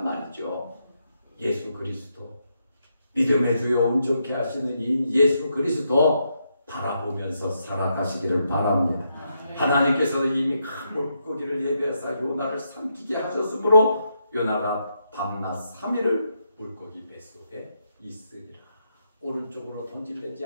말이죠. 예수 그리스도, 믿음의 주여 온전케 하시는 이 예수 그리스도 바라보면서 살아가시기를 바랍니다. 하나님께서 이미 큰 물고기를 예비하사 요나를 삼키게 하셨으므로 요나가 밤낮 3일을 물고기 뱃속에 있으리라. 오른쪽으로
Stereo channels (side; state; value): both; inverted; correlation -0.80